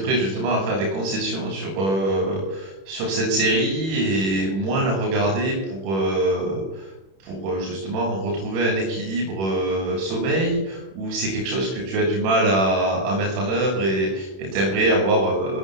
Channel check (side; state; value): left; late; 31 ms